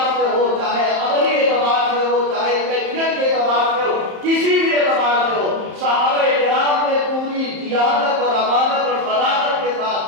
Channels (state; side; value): late; left; 31 ms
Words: سے ہو، چاہے عملی اعتبار سے ہو، چاہے کیفیت کے اعتبار سے ہو، کسی بھی اعتبار سے ہو، صحابہ کرام نے پوری دیانت اور امانت اور صداقت کے